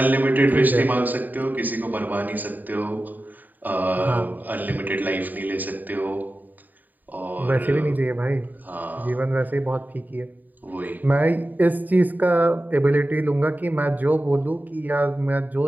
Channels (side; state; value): left; late; 0.086 ms